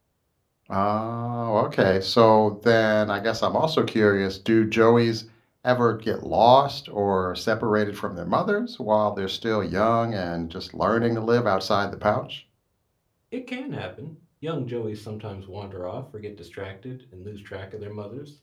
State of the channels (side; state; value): both; identical; correlation 1.00